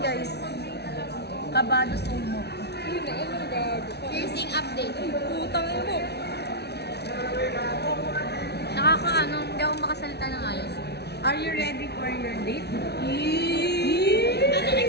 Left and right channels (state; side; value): late; right; 0.49 ms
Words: guys. Kabado sumo. Piercing update. Putang ina mo. Nakakaano, hindi ako makasalita ng ayos. Are you ready for your date? Anong